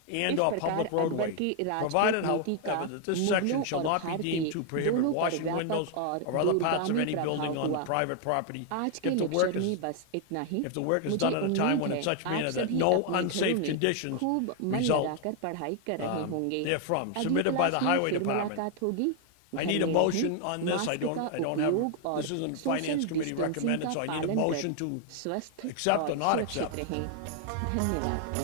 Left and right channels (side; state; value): both; different; correlation 0.00